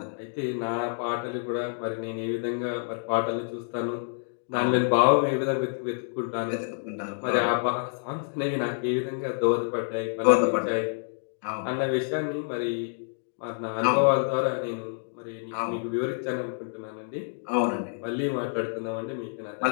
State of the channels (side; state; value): right; silent; digital silence